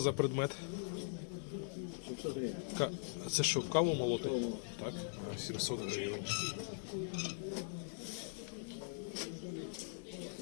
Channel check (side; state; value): right; silent; digital silence